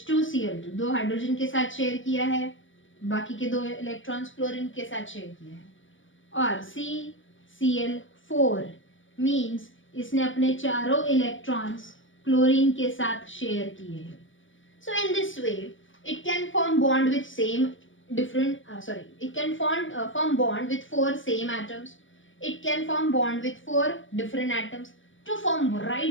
2 हाइड्रोजन के साथ शेयर किया है, बाकी के 2 इलेक्ट्रॉन्स क्लोरीन के साथ शेयर किया है. और CCl4 मींस इसने अपने चारों इलेक्ट्रॉन्स क्लोरीन के साथ शेयर किए हैं. So in this way it can form bond with same it can form bond with 4 same atoms. It can form bond with 4 different atoms to form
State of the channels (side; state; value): right; late; 0.56 ms